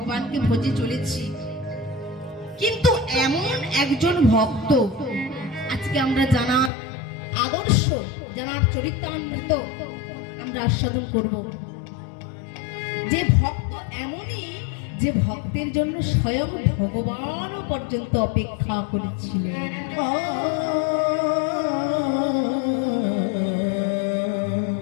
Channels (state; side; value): drops out; right; at 6.7 s